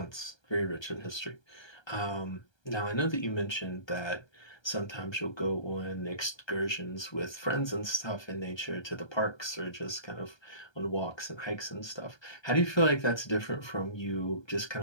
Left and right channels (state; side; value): late; right; 1.3 ms